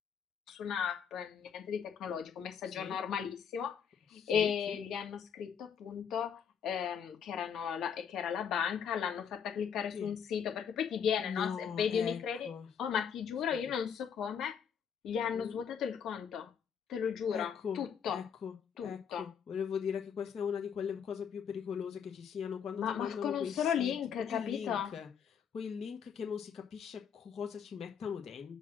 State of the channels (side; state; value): right; quieter; 7.5 dB